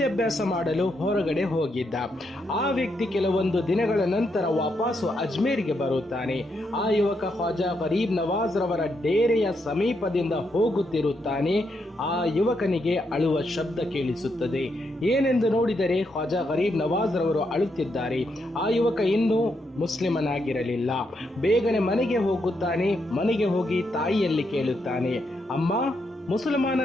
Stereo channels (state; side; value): normal; both; correlation 0.80